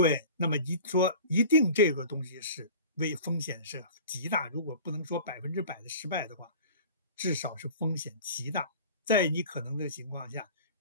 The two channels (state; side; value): inverted; both; correlation -0.40